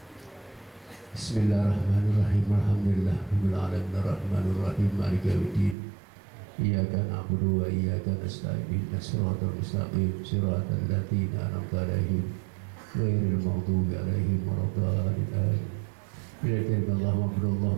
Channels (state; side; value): drops out; left; at 5.8 s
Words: Bismillahirrahmanirrahim. Alhamdulillah rabbil alamin arrahmanir rahim maliki yaumiddin. Iyyaka na'budu wa iyyaka nasta'in ihdinas siratal mustaqim siratal ladzina an'amta 'alaihim ghairil maghdubi 'alaihim waladdallin.